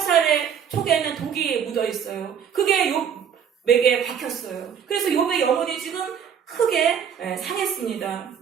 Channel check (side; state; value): left; quieter; 8.0 dB